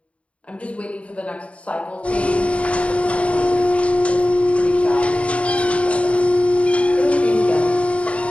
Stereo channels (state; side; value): late; right; 0.063 ms